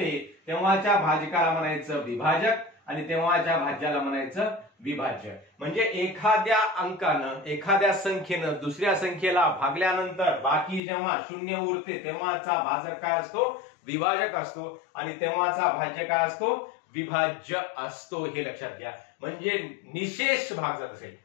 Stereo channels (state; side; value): drops out; right; at 10.8 s